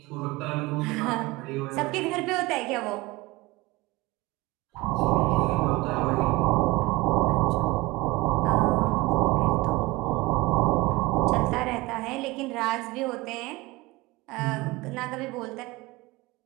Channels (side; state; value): left; quieter; 21.1 dB